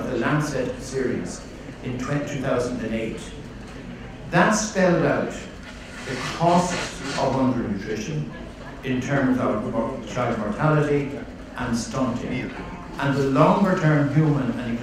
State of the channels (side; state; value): both; identical; correlation 1.00